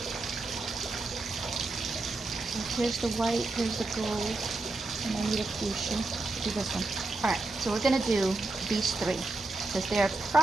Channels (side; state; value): left; quieter; 3.2 dB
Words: So here's the white, here's the gold, and I need a fuchsia. Do this one. All right, so we're gonna do these three because they're